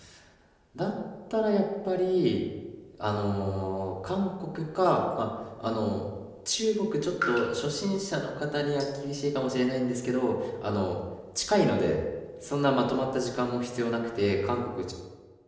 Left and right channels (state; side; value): identical; both; correlation 1.00